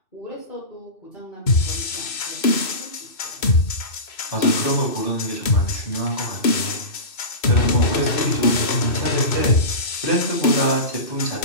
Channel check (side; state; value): right; late; 2.6 ms